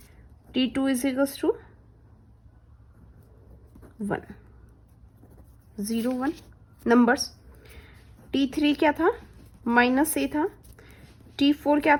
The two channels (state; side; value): identical; both; correlation 1.00